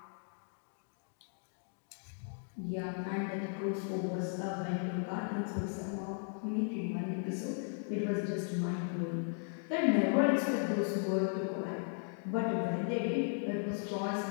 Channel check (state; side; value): silent; right; 54 dB below the other